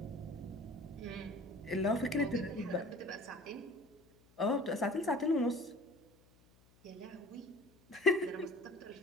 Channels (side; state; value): left; noise; hum, 30 dB below the sound